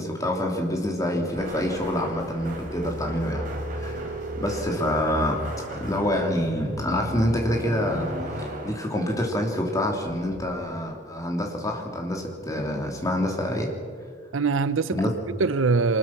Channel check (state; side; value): normal; both; correlation 0.53